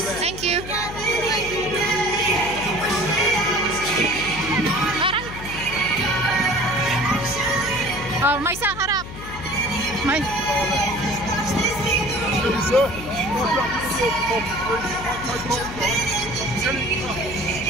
Thank you. Aray. Oh, may isang harap. May.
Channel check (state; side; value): noise; left; hum, 11 dB below the sound